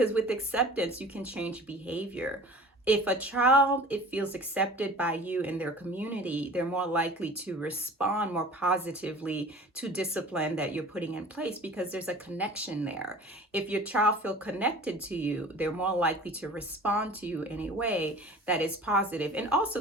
with acceptance, you can change behavior. If a child it feels accepted by you in their community, they're more likely to respond more positively to discipline that you're putting in place because there's a connection there. If your child feel connected to you, they're more likely to respond to you in a way that is positive. And also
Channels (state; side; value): normal; both; correlation 0.43